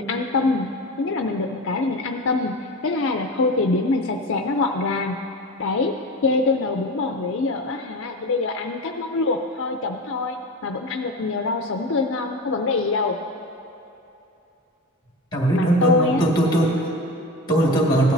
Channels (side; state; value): both; normal; correlation 0.27